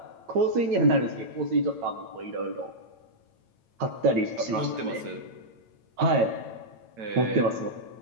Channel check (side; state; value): left; late; 8.9 ms